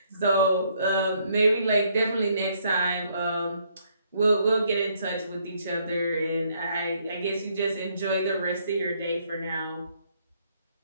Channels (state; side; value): inverted; both; correlation -0.69